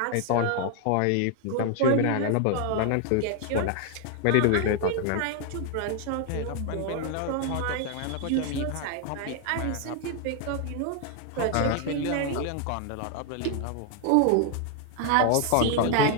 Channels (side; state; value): both; different; correlation 0.00